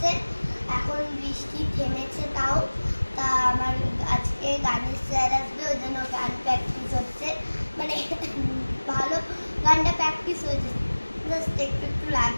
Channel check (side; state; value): both; inverted; correlation -1.00